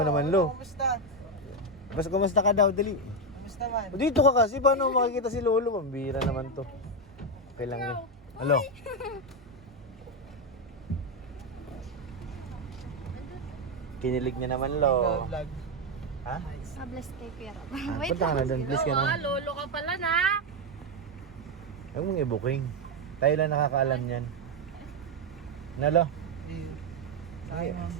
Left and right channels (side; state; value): both; normal; correlation 0.07